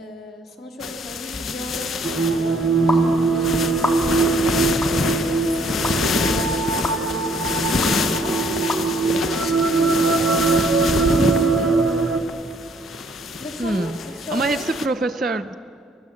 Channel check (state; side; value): normal; both; correlation 0.63